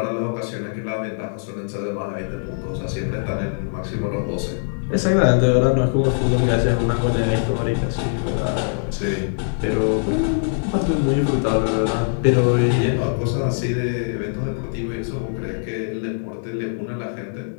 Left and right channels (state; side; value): silent; right; 64 dB below the other